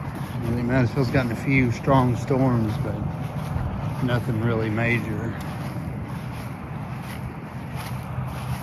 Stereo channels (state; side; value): identical; both; correlation 1.00